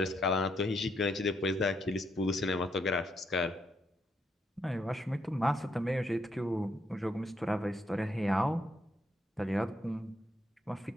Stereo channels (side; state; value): both; normal; correlation 0.75